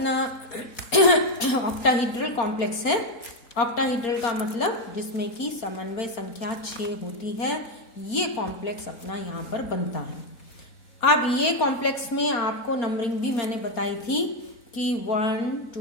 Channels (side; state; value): right; late; 4.3 ms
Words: ऑक्टाहीड्रल कॉम्प्लेक्स है। ऑक्टाहीड्रल का मतलब जिसमें कि समन्वय संख्या 6 होती है, ये कॉम्प्लेक्स अपना यहाँ पर बनता है। अब ये कॉम्प्लेक्स में आपको नंबरिंग भी मैंने बताई थी कि 1